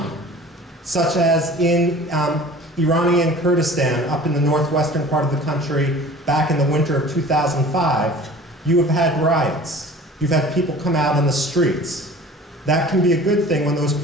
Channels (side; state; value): both; normal; correlation 0.44